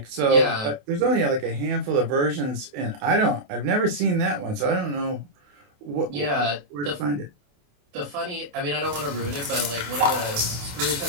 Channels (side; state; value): left; late; 28 ms